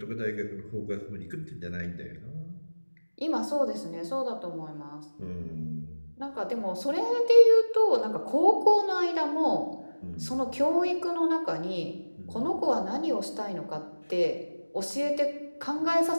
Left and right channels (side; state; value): both; inverted; correlation -1.00